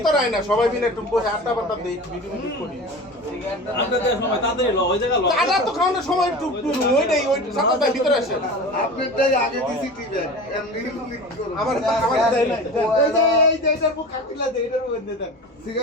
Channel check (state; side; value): normal; both; correlation 0.33